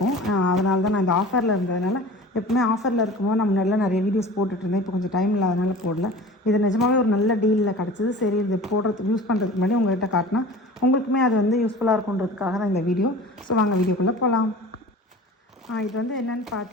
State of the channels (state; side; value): normal; both; correlation 0.39